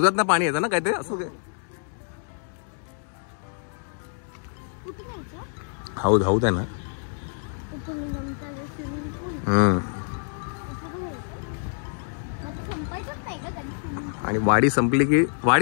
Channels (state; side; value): silent; right; digital silence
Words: ना पाणी येतं ना काय ते असं ते. हौद आहे ना. आणि वाडी